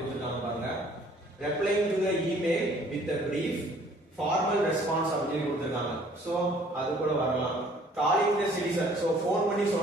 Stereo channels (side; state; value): both; normal; correlation 0.57